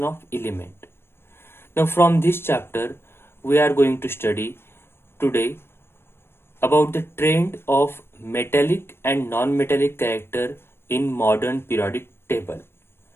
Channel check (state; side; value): late; right; 0.12 ms